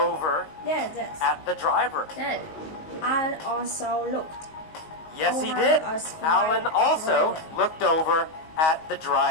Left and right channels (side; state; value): right; late; 19 ms